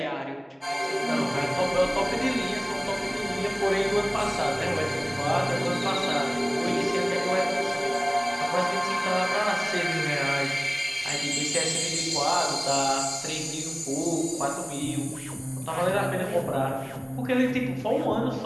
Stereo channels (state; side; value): identical; both; correlation 1.00